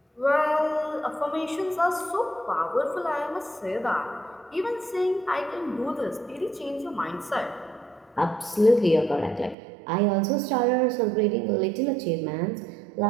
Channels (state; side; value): drops out; left; at 9.6 s